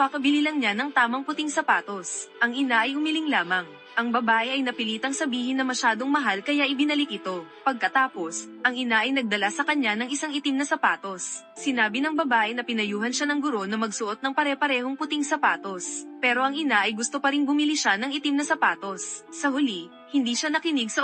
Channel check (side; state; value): both; identical; correlation 1.00